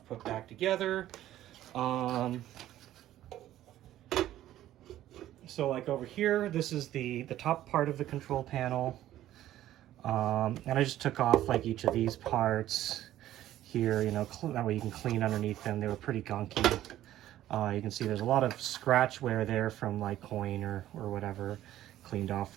put back together. So like over here, this is the top part of the control panel. And I just took off like each of these parts here, you know, that way you can clean underneath them. They were pretty gunky. You can see there's a lot of scratch wear there from like coin or whatever. Cleaned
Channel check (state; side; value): quieter; left; 13.3 dB